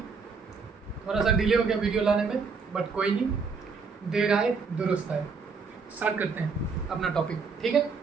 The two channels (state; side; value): quieter; left; 5.0 dB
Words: थोड़ा सा डिले हो गया वीडियो लाने में, बट कोई नहीं, देर आए दुरुस्त आए। स्टार्ट करते हैं अपना टॉपिक, ठीक है।